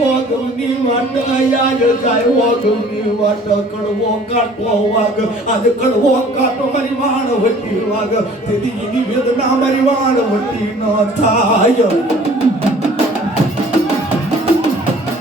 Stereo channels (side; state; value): both; normal; correlation 0.51